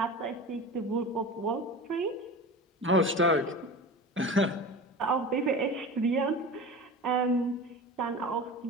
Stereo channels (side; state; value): both; normal; correlation 0.32